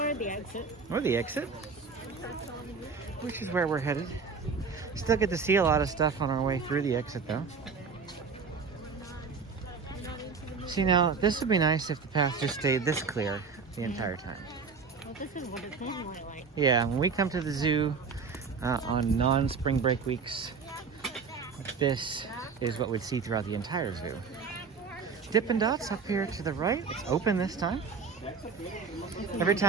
the exit. Or the exit. Which is where we're headed. Still get to see a lot of stuff on our way through the exit though. See, now this would be nice if the path just stayed this clear the entire time. Well, this is what it's normally like. Yeah, when we come to the zoo on non-spring break weeks, this is what we'd see throughout the entire zoo. Dippin' Dots up here to the right. It's open this time. Every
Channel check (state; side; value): quieter; left; 5.2 dB